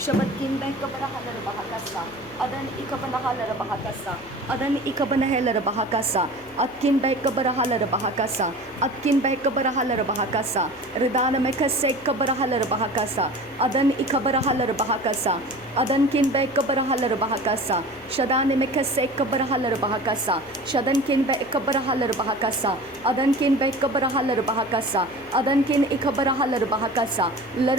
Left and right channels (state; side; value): noise; left; hum, 26 dB below the sound